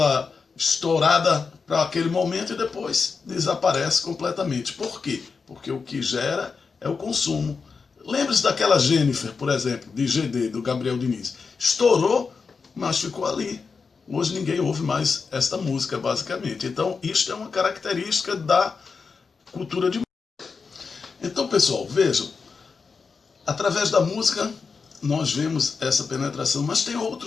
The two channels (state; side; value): quieter; right; 5.0 dB